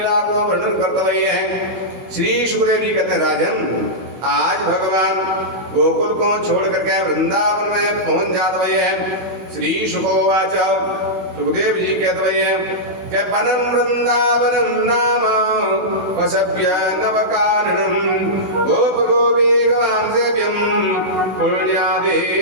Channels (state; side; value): late; left; 16 ms